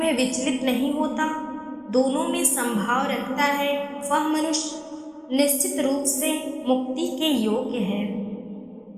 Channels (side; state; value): both; identical; correlation 1.00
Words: विचलित नहीं होता, दोनों में संभाव रखता है, वह मनुष्य निश्चित रूप से मुक्ति के योग्य है।